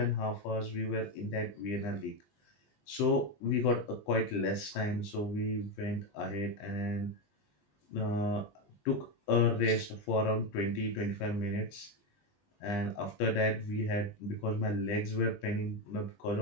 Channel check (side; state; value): right; late; 20 ms